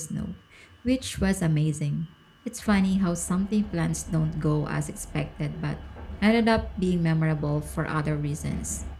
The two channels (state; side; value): identical; both; correlation 1.00